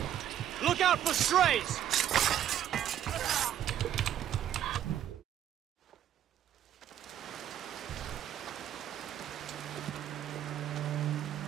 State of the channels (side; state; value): left; quieter; 10.9 dB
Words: Look out for strays!